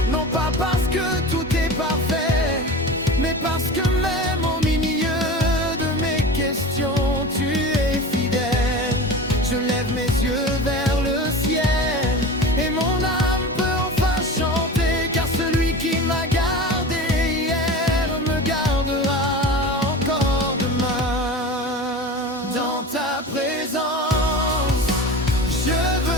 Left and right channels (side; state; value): both; normal; correlation 0.32